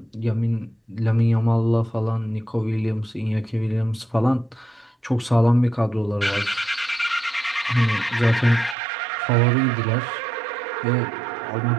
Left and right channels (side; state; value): left; drops out; at 8.8 s